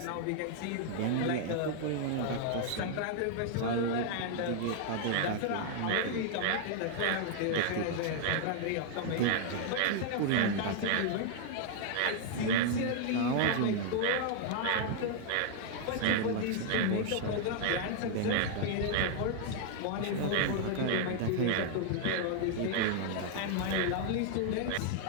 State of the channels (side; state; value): both; different; correlation 0.00